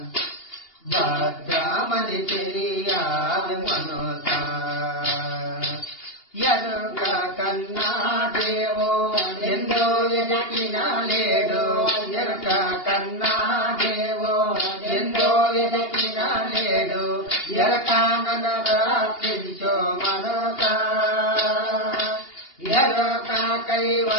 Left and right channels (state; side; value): late; right; 2.8 ms